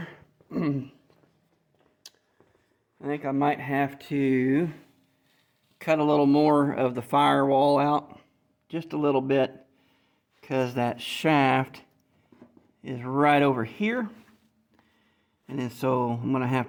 I think I might have to cut a little more of the firewall out, just a little bit, because that shaft is right over here. And then so I'm going to have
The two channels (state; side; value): identical; both; correlation 1.00